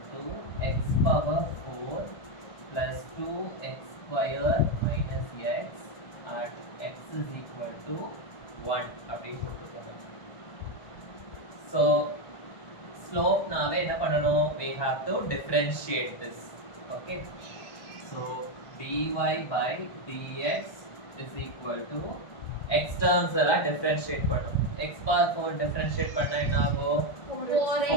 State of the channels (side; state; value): right; late; 1.2 ms